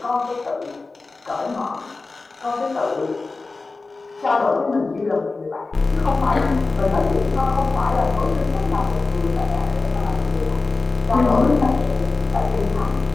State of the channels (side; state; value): right; quieter; 3.7 dB